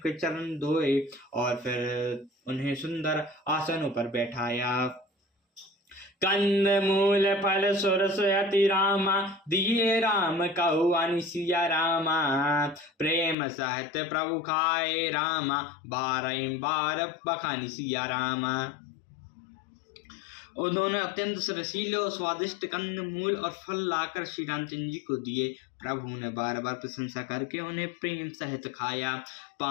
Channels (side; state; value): right; drops out; at 13.4 s